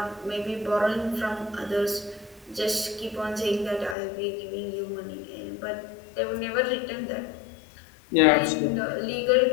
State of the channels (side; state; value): right; drops out; at 4.0 s